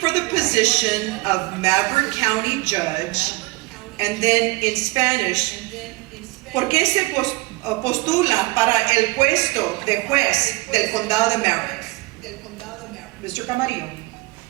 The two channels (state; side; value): quieter; left; 23.1 dB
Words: the position of Maverick County Judge? And then in Spanish, ¿por qué se postula para el puesto de juez del condado de Maverick? Mr. Camarillo.